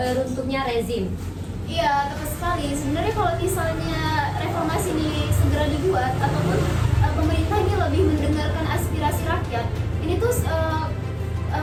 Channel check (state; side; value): identical; both; correlation 1.00